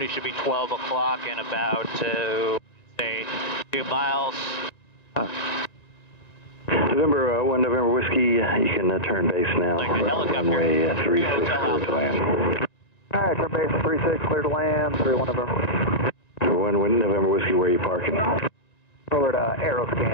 should be 12 o'clock in about, say, 2 miles. November 1 November Whiskey, you can turn base now. Like the helicopter. Runway 36, clear to land. Alright, turn base 36, clear to land, 31 November Whiskey. 1 November Whiskey, where are you parking? Over to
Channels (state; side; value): late; right; 1.9 ms